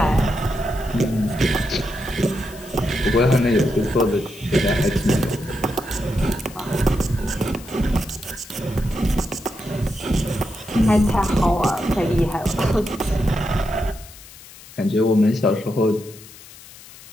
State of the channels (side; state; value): left; noise; hiss, 19 dB below the sound